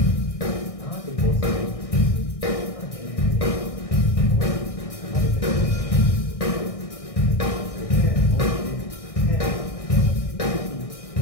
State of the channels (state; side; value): late; right; 1.6 ms